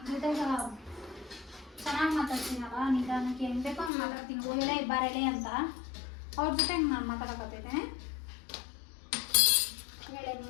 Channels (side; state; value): right; drops out; at 3.9 s